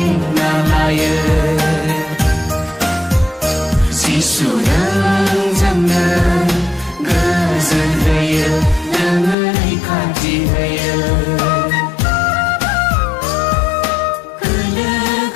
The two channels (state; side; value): drops out; right; at 9.3 s